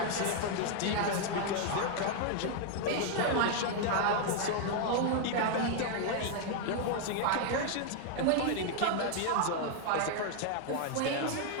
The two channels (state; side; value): different; both; correlation 0.00